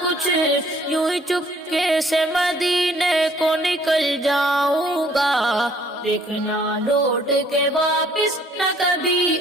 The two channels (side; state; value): both; normal; correlation 0.60